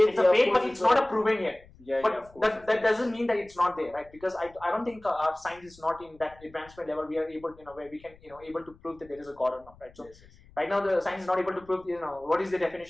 a faith, but it's not a proven yet. But that doesn't mean that it's not there, right? Because I don't think our science is not in that advancement level. We are able, where we can, able to prove that there is a God or not, right? So right now the science is not able to prove, what is the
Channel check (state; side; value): noise; left; rumble, 25 dB below the sound